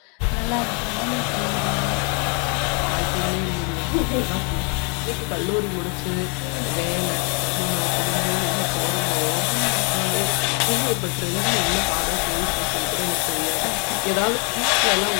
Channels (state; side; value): quieter; right; 36.0 dB